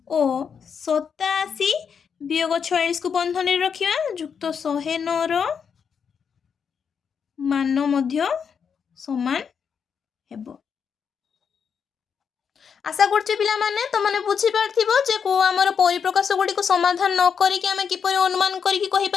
ଓ 87 ବିୟୋଗ 46କୁ ବନ୍ଧନୀରେ ରଖିବା ଯୁକ୍ତ 109ର ମାନ ମଧ୍ୟ ସମାନ ହେବ। आशा करछि पिलामाने तमने बुझी पारथिबो जे को हमर परिप्रकाश गुडी को समाधान न करी कि हमें किपरि अनुमान करी कि कहि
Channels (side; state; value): right; quieter; 6.8 dB